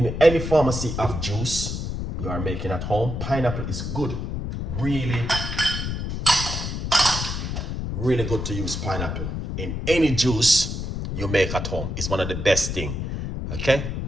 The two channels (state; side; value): noise; left; rumble, 4 dB below the sound